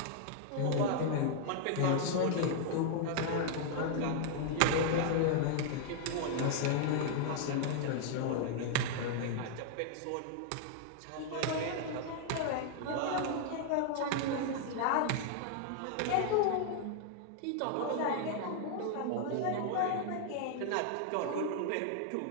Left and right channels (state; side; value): different; both; correlation 0.00